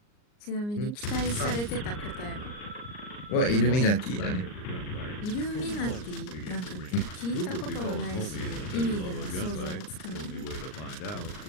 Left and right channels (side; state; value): right; late; 39 ms